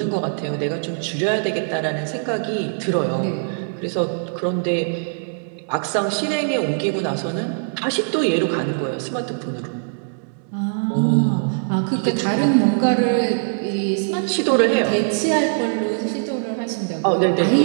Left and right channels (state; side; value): silent; left; digital silence